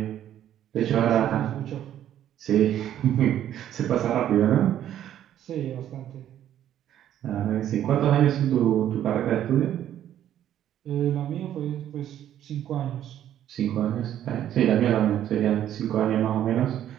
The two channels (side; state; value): left; quieter; 11.2 dB